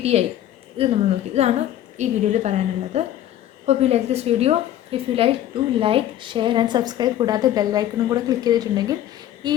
ഇത് നമ്മൾ നോക്കി. ഇതാണ് ഈ വീഡിയോയിൽ പറയാനുള്ളത്. Hope you like this video. If you like to like, share and subscribe. കൂടാതെ ബെല്ലൈക്കണും കൂടെ ക്ലിക്ക് ചെയ്തിട്ടുണ്ടെങ്കിൽ ഈ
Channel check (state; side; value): quieter; right; 12.2 dB